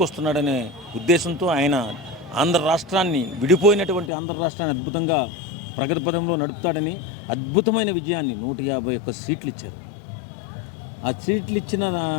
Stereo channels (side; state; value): right; drops out; at 4.1 s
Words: ఉద్దేశంతో ఆయన ఆంధ్ర రాష్ట్రాన్ని, విడిపోయినటువంటి ఆంధ్ర రాష్ట్రాన్ని అద్భుతంగా ప్రగతి పదంలో నడుపుతాడని అద్భుతమైన విజయాన్ని 151 సీట్లు ఇచ్చారు. ఆ సీట్లు ఇచ్చిన